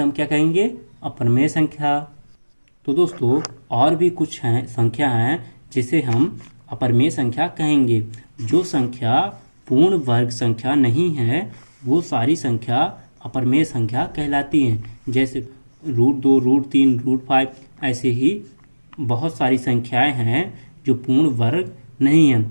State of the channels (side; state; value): both; inverted; correlation -1.00